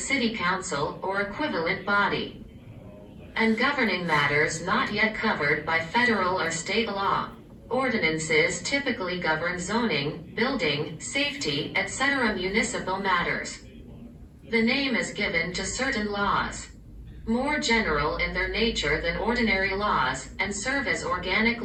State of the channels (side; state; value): both; identical; correlation 1.00